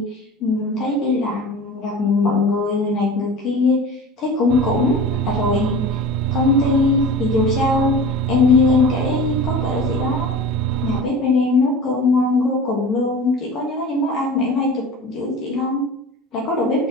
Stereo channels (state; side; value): normal; both; correlation 0.36